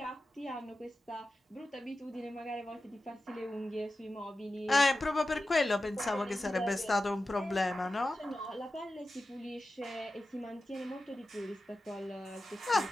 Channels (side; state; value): both; normal; correlation 0.93